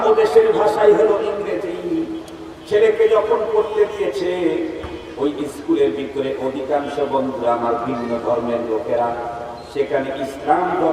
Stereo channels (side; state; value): both; identical; correlation 1.00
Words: ও দেশের ভাষাই হলো ইংরেজি। ছেলেকে যখন পড়তে দিয়েছে, ওই স্কুলের ভিতরে অধিকাংশ বন্ধুরা আমার ভিন্ন ধর্মের লোকেরা, সেখানে ইসলাম